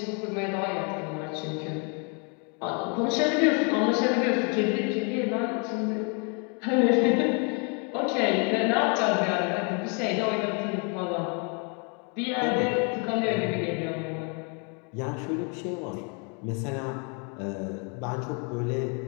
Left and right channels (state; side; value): quieter; right; 36.4 dB